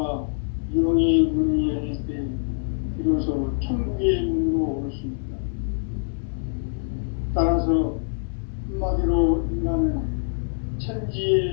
영의 문이 열릴 때 비로소 천국의 문으로 올 수 있다. 따라서 한마디로 인간은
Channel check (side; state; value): right; silent; digital silence